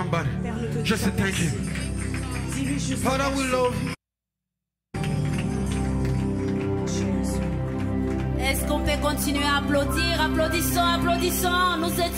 Just say thank you. Father, we love you. Est-ce qu'on peut continuer à applaudir? Applaudissons, applaudissons. Nous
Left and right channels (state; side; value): identical; both; correlation 1.00